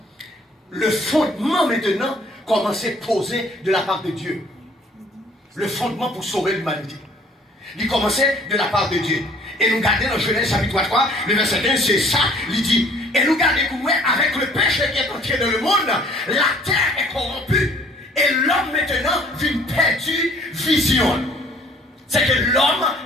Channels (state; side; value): normal; both; correlation 0.56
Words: Le fondement maintenant commence à poser de la part de Dieu. Le fondement pour sauver l'humanité. Il commençait de la part de Dieu. Et nous regardons dans Genèse chapitre 3, le verset 1, c'est ça, il dit, et nous regardons avec le péché qui est entré dans le monde, la terre est corrompue. Et l'homme maintenant vient perdu vision. C'est que l'homme